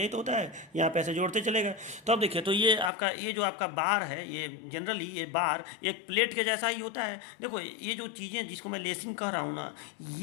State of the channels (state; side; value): drops out; right; at 2.9 s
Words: तो होता है, यहाँ पे ऐसे जोड़ते चलेगा। तो अब देखिए, तो ये आपका ये जो आपका बार है, ये जनरली ये बार एक प्लेट के जैसा ही होता है। देखो ये जो चीज़ें जिसको मैं लेसिंग कह रहा हूँ ना,